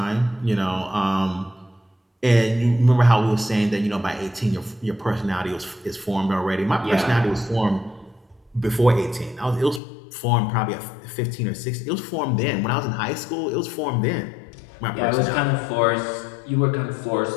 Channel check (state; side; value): drops out; right; at 9.8 s